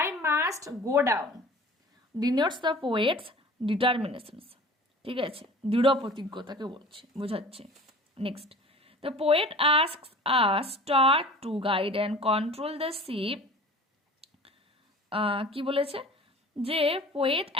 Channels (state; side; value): normal; both; correlation 0.43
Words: must go down denotes the poet's determinations, ঠিক আছে, দৃঢ় প্রতিজ্ঞতাকে বলছে, বোঝাচ্ছে। Next, the poet asks a star to guide and control the ship, কি বলেছে, যে পোয়েট